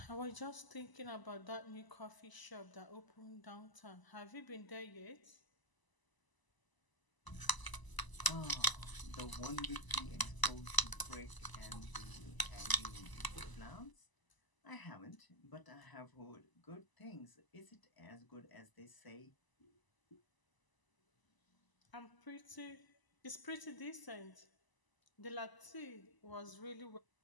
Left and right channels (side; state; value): right; late; 1.0 ms